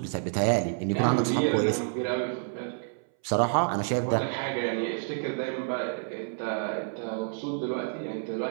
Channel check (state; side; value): silent; left; 59 dB below the other